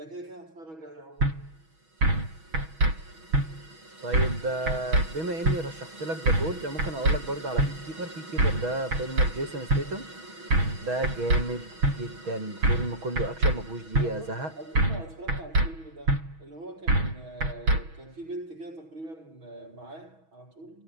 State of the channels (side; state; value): left; late; 6.2 ms